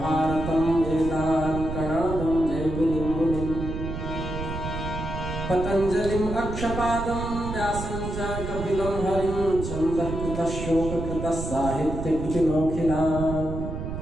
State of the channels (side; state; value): right; noise; rumble, 6 dB below the sound